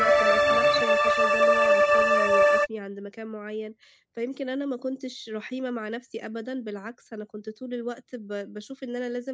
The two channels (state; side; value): identical; both; correlation 1.00